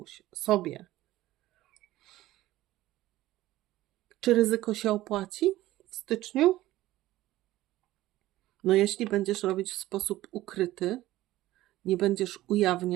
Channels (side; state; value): left; quieter; 16.0 dB